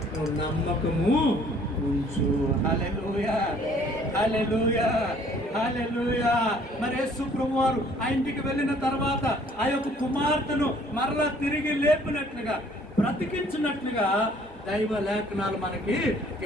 నువ్వు నమ్మకము ఉంచు. హల్లెలూయా, హల్లెలూయా, హల్లెలూయా. మరి యేసు ప్రభువు వారు ఆ ఇంటికి వెళ్ళిన తర్వాత ఆ యొక్క కుమార్తెను మరలా తిరిగి లేపినట్లుగా, బ్రతికించినట్లుగా దైవ లేఖనాలు మనకి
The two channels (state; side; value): normal; both; correlation 0.58